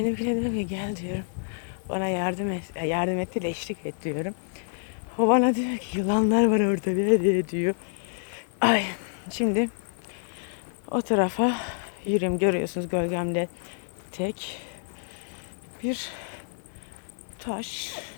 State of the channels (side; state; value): right; silent; 59 dB below the other